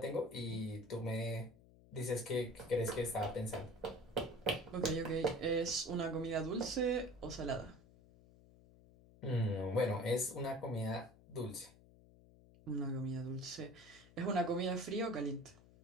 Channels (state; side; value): noise; left; hum, 24 dB below the sound